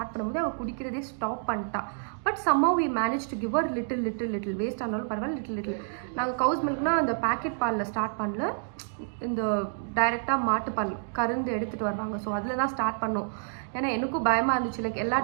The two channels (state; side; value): silent; left; digital silence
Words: பண்ணும்போது அவள் குடிக்கிறதே ஸ்டாப் பண்ணிட்டா. But somehow we managed to give her little waste ஆனாலும் பரவாயில்ல லிட்டில். நாங்கள் கவுஸ் மில்க்னால் அந்த பேக்கெட் பாலில் ஸ்டார்ட் பண்ணல, இந்த டைரெக்டாக மாட்டுப்பால் கருந்து எடுத்துகிட்டு வருவாங்க. ஸோ அதில் தான் ஸ்டார்ட் பண்ணோம். ஏன்னா எனக்கும் பயமாக இருந்துச்சு, லைக் எல்லா